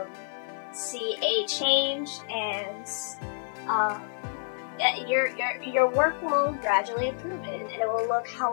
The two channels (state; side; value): silent; right; digital silence